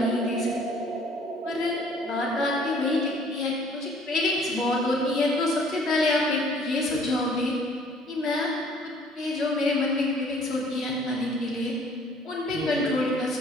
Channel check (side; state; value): both; normal; correlation 0.56